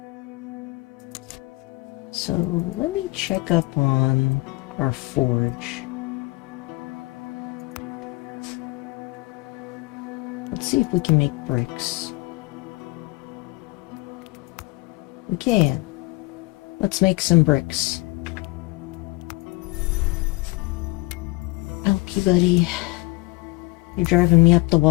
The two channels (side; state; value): right; quieter; 22.9 dB